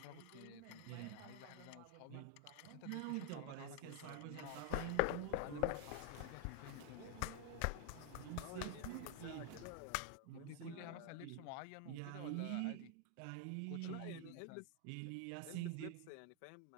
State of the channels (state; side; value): different; both; correlation 0.00